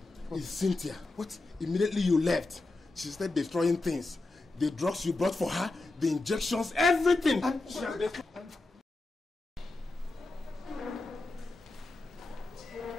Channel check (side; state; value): right; quieter; 3.1 dB